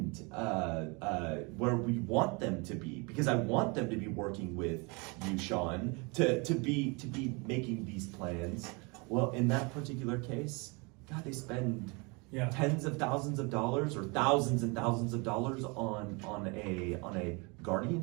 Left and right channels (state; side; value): quieter; left; 29.6 dB